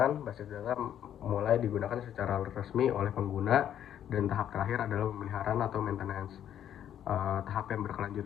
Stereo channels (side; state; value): right; quieter; 10.3 dB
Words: Basis data mulai digunakan secara resmi oleh pengguna, dan tahap terakhir adalah pemeliharaan atau maintenance. Tahap yang